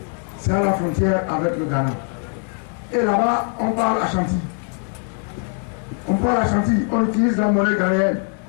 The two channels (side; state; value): right; quieter; 39.6 dB